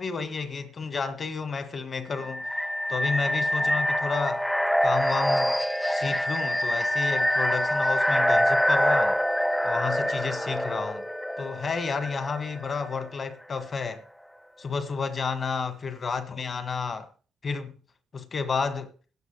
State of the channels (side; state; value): both; normal; correlation 0.95